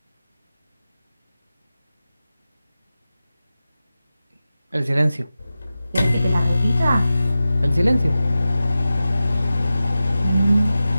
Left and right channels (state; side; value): inverted; both; correlation -0.93